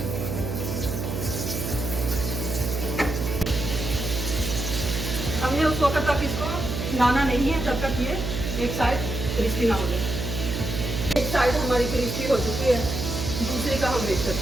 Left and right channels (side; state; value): right; noise; hum, 3 dB below the sound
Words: हमने उस वक्त तक इसको हिलाना नहीं है जब तक ये एक साइड क्रिस्पी ना हो जाए। एक साइड हमारी क्रिस्पी हो चुकी है, दूसरी का हम वेट